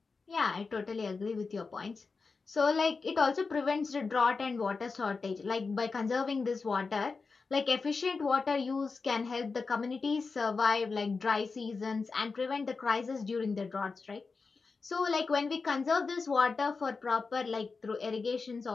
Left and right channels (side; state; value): right; quieter; 4.5 dB